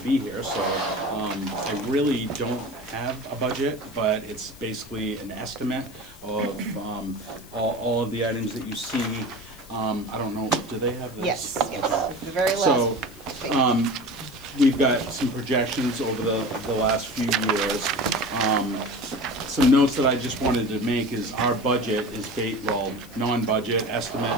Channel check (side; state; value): left; noise; hiss, 22 dB below the sound